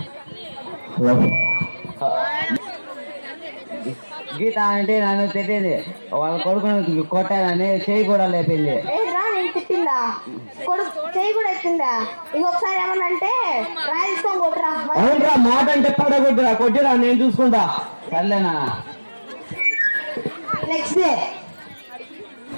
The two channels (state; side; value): inverted; both; correlation -1.00